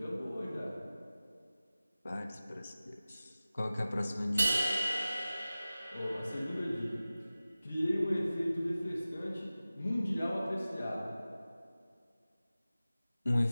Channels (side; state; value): both; inverted; correlation -0.96